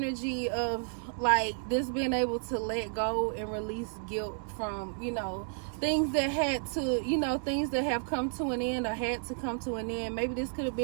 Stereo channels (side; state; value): left; silent; 57 dB below the other